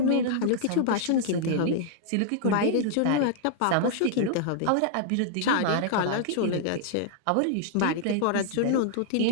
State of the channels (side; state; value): both; different; correlation -0.01